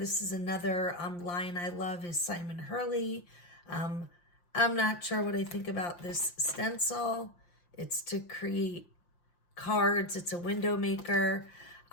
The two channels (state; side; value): late; right; 5.7 ms